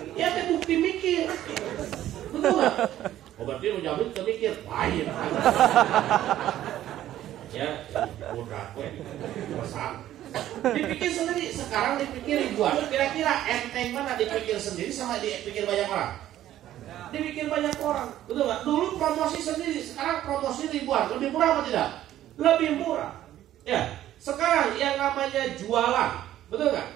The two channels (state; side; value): quieter; left; 12.8 dB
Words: Ya, itu bukti mikir, betul nggak? Oh berarti lu jamin mikir, lain. Ya, udah, pesan. Dipikir sendiri, sekarang dipikir ribuan. Kira-kira enteng mana dipikir sendiri sama dipikir banyak orang? Dipikir banyak orang, betul nggak? Dulu promosi sendiri, sekarang promosi ribuan, lebih murah apa tidak? Lebih murah. Ya, sekarang yang namanya jualan, betul nggak?